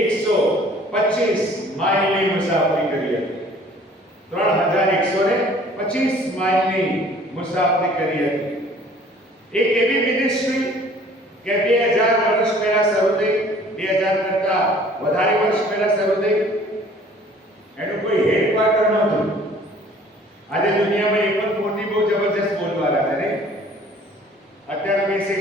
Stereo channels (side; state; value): both; normal; correlation 0.53